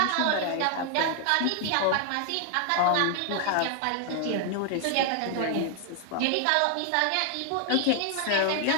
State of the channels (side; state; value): both; different; correlation 0.00